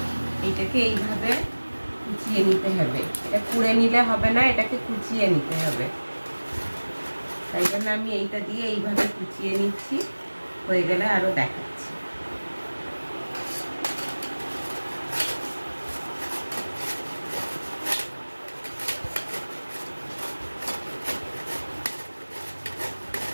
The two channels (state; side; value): inverted; both; correlation -1.00